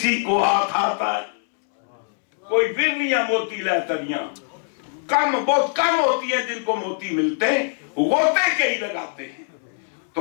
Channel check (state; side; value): silent; right; 64 dB below the other